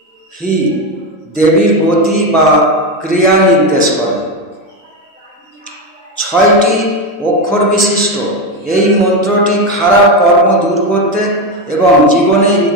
হি দেবীর গতি বা ক্রিয়া নির্দেশ করে। 6টি অক্ষর বিশিষ্ট এই মন্ত্রটি খারাপ কর্ম দূর করতে এবং জীবনে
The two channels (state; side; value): normal; both; correlation 0.13